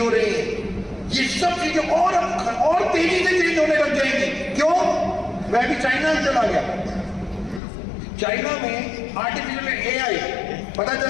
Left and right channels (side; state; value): right; drops out; at 7.6 s